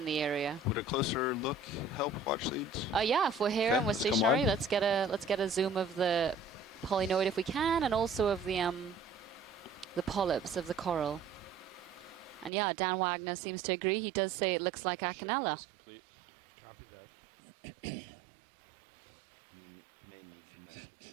the area. Would a closer look help, watch leads? Yeah, if we're here and we're stationary, let's get a zoom of the polynoid if we can, and also of the polyps of the coral. And yeah, Dan Wagner seems to agree. He does say it looks like Acanella. Is complete. Copy that. You may need to mess with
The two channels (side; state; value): left; drops out; at 12.5 s